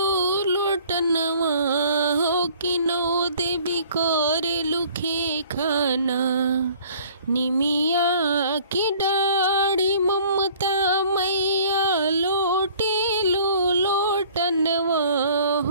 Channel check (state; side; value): inverted; both; correlation -0.53